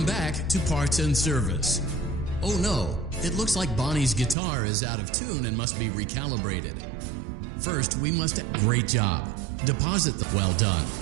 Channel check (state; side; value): drops out; left; at 4.4 s